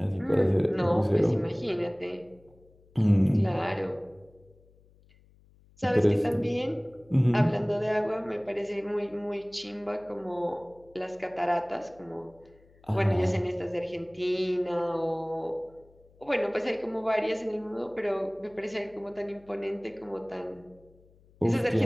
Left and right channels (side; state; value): left; noise; hum, 29 dB below the sound